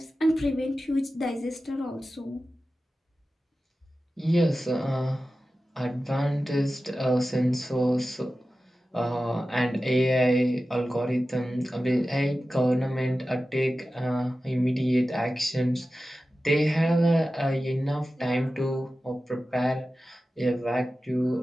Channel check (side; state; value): both; normal; correlation 0.94